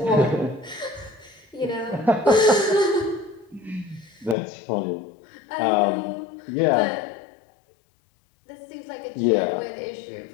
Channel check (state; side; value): drops out; right; at 4.4 s